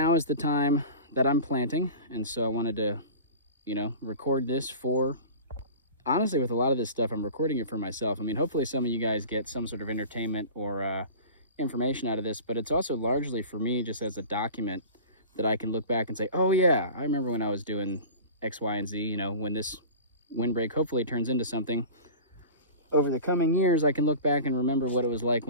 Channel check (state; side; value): inverted; both; correlation -0.37